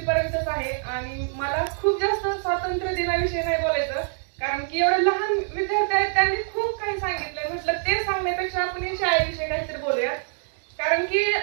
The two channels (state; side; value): silent; left; 62 dB below the other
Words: पर्यंतच आहे. आणि मला खूप जास्त स्वातंत्र्य दिनाविषयी नाही बोलायचं कारण की एवढे लहान विद्यार्थी आहेत, त्यांनी खूप काही सांगितलं. म्हटलं ते सांगण्यापेक्षा आपण या शाळेविषयी काहीतरी बोलूया. कारण की